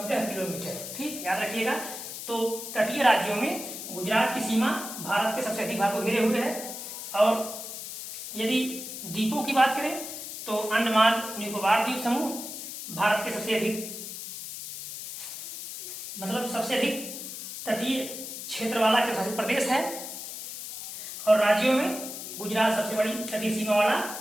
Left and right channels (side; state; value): left; noise; hiss, 8 dB below the sound